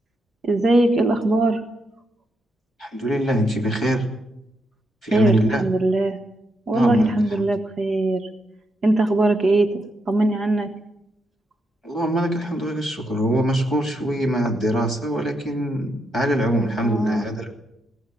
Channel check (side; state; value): both; normal; correlation 0.81